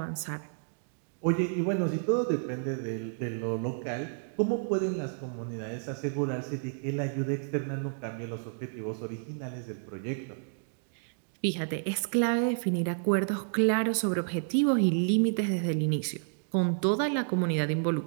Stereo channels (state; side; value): silent; left; digital silence